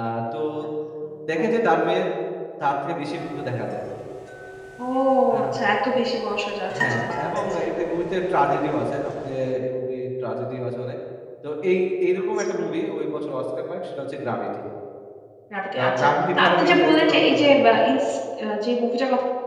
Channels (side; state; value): both; identical; correlation 1.00